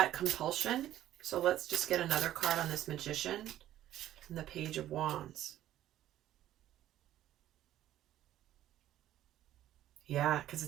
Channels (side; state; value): left; quieter; 12.9 dB